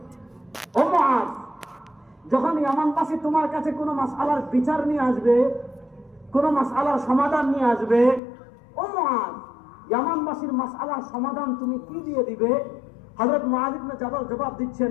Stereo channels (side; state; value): right; drops out; at 8.2 s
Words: ও মুআজ, যখন ইয়ামানবাসী তোমার কাছে কোনো মাসআলার বিচার নিয়ে আসবে, কোনো মাসআলার সমাধান নিয়ে আসবে, ও মুআজ, ইয়ামানবাসীর মাসআলার সমাধান তুমি কি দিয়ে দিবে? হযরত মুআজ ইবনে জাবাল জবাব